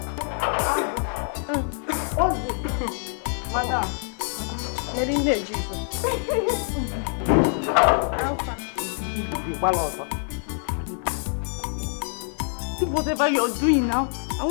what's this? Madam. Whatever you're doing now, I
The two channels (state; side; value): silent; right; 57 dB below the other